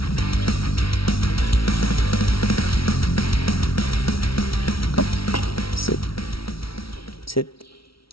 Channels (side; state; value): right; late; 0.75 ms